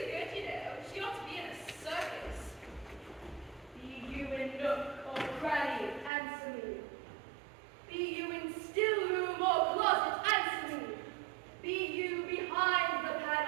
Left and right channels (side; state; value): left; drops out; at 6.1 s